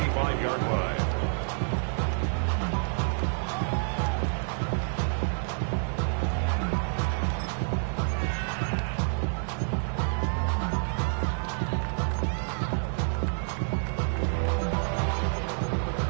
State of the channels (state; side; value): silent; left; 59 dB below the other